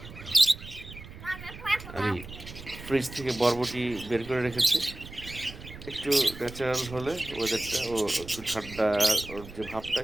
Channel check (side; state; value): right; noise; rumble, 14 dB below the sound